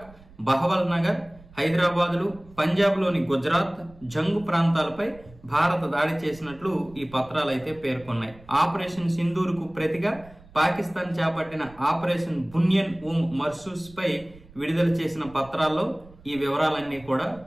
బహవల్ నగర్, హైదరాబాదులు, పంజాబ్లోని గుజరాత్, జంగు ప్రాంతాలపై భారత దాడి చేసినట్లు ఈ పత్రాలు అయితే పేర్కొన్నాయి. ఆపరేషన్ సింధూర్ కు ప్రతిగా పాకిస్తాన్ చేపట్టిన ఆపరేషన్ బునియన్ మర్సూస్ పై విడుదల చేసిన పత్రాల్లో ఈ వివరాలన్నీ కూడా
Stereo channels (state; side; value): noise; right; rumble, 23 dB below the sound